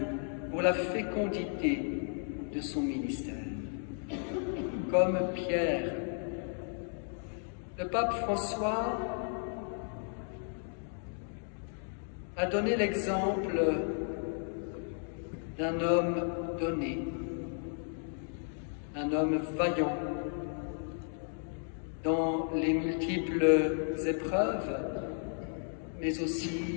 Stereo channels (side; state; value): right; silent; 55 dB below the other